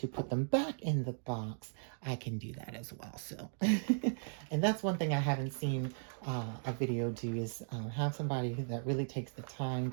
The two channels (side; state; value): left; silent; digital silence